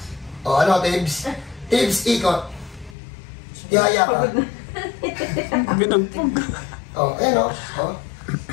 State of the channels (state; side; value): drops out; right; at 3.0 s